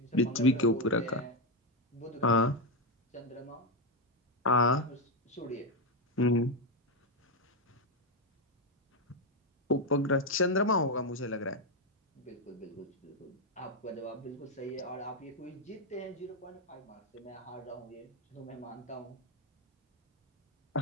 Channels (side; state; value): both; normal; correlation 0.05